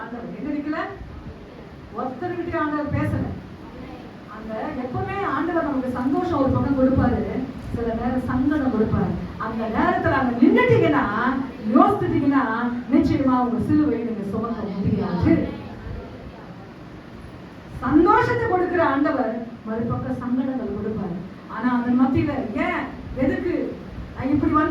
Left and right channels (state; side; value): identical; both; correlation 1.00